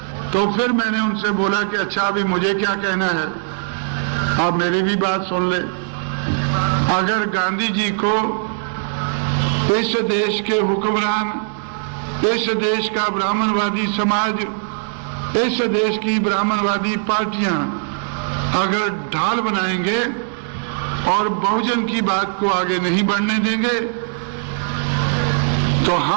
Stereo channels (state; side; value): silent; left; 66 dB below the other